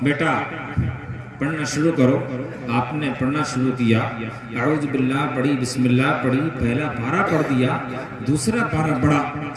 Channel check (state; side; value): identical; both; correlation 1.00